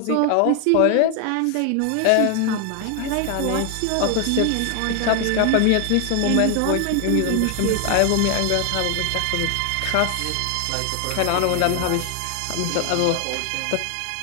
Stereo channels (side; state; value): both; different; correlation 0.00